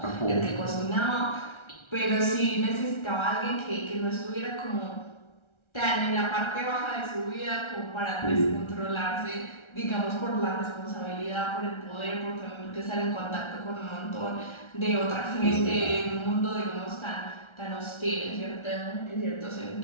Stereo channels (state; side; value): late; right; 1.3 ms